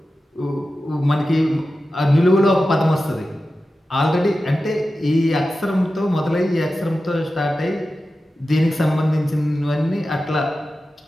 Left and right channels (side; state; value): both; normal; correlation 0.93